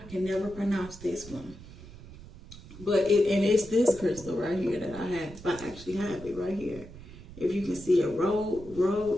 can never pronounce this one, but it's this crystal right here that I have. I actually have it right here. If you can see a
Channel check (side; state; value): right; noise; rumble, 16 dB below the sound